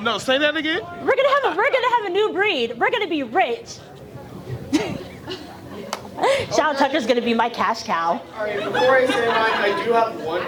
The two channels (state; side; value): identical; both; correlation 1.00